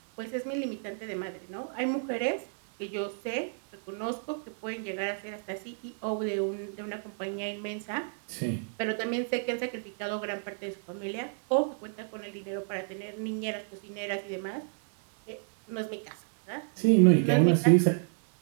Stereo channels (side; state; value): left; silent; 57 dB below the other